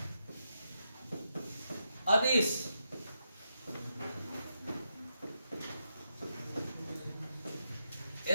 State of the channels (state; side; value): inverted; both; correlation -0.83